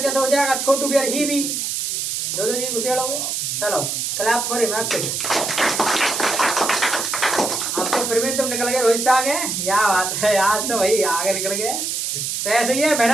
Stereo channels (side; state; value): right; noise; hiss, 2 dB below the sound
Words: कैसे हो जाएगा? छोटू भी और ही भी दो जी घुसेड़ोगे। चलो क्लैप फॉर हिम। अब तो फिर भी तुम निकल गए रोहित से आगे। क्या बात है आज तो भाई आगे निकल गए। तो ऐसे ही है